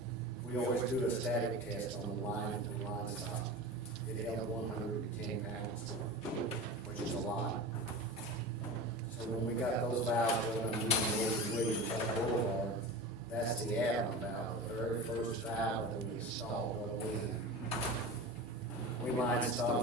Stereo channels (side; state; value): both; normal; correlation 0.30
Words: We always do a static test on the line to the line stop. It held 110 pounds, which is a lot. So when we got those valves done, that's the add-on valve, the very first valve that we installed going in. We line